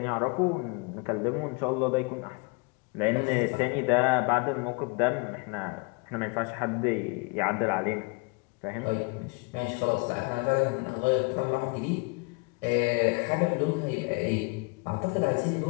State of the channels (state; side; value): quieter; right; 30.7 dB